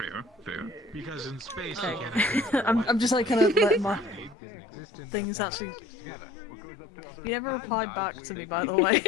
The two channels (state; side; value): drops out; right; at 4.4 s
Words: Because in space, I'm just like kind of letting my things actually You never replied back to me, by the way,